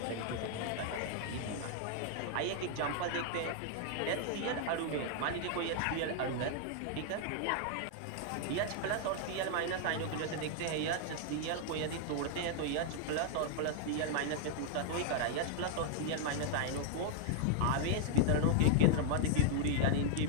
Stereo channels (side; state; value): both; different; correlation -0.01